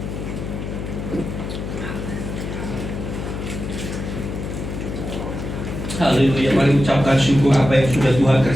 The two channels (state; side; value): noise; left; hum, 6 dB below the sound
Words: Haleluya. Mari ucapkan syukur apa yang sudah Tuhan